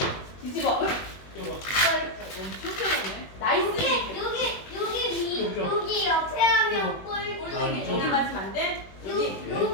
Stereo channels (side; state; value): right; late; 21 ms